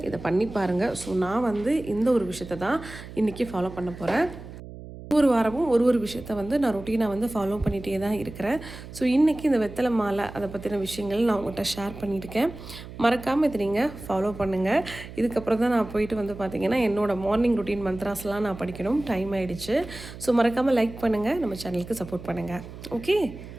இதை பண்ணி பாருங்கள். ஸோ நான் வந்து இந்த ஒரு விஷயத்தை தான் இன்றைக்கி ஃபாலோ பண்ண போகிறேன். ஒவ்வொரு வாரமும் ஒரு விஷயத்த வந்து நான் ரொட்டீனாக வந்து ஃபாலோ பண்ணிகிட்டே தான் இருக்கிறேன். ஸோ இன்றைக்கி இந்த வெத்தலை மாலை அதை பற்றின விஷயங்கள் நான் உங்கள்கிட்ட ஷேர் பண்ணியிருக்கேன். மறக்காமல் இதை நீங்கள் ஃபாலோ பண்ணுங்கள். இதுக்கப்புறம் தான் நான் போயிட்டு வந்து பார்த்திங்கன்னா என்னோடய மார்னிங் ரொட்டீன் மந்த்ராஸ்லாம் நான் படிக்கணும். டைம் ஆகிடுச்சு. ஸோ மறக்காமல் லைக் பண்ணுங்கள், நம்ம சேனலுக்கு சப்போர்ட் பண்ணுங்கள். ஓகே,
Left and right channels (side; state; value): right; noise; hum, 14 dB below the sound